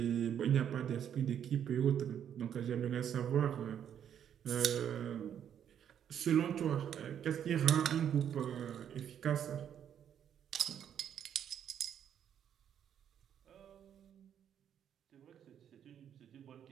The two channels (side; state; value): left; quieter; 9.2 dB